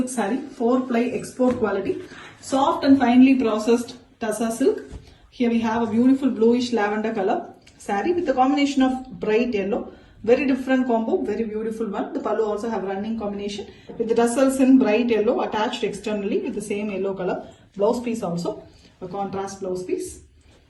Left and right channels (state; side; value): identical; both; correlation 1.00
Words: saree, 4-ply export quality, soft and finely processed tussar silk. Here we have a beautiful bluish lavender color saree with a combination of bright yellow. Very different combo, very beautiful one. The pallu also have running combination with the tassels in bright yellow attached externally with the same yellow color. Blouse piece also, a contrast blouse piece.